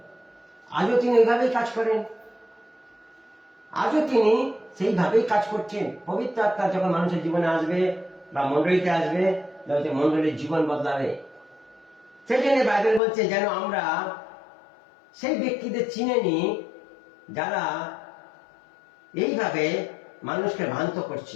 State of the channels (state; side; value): drops out; right; at 13.0 s